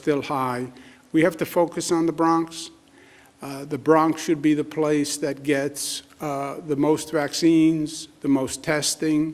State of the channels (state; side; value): identical; both; correlation 1.00